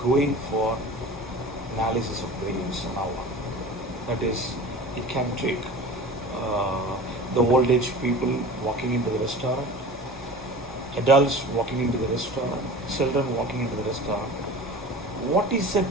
go in for analysis of variance now. That is, it can take the old age people walking into the restaurant, adults walking into the restaurant, children walking into the restaurant. What is the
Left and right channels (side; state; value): both; normal; correlation 0.37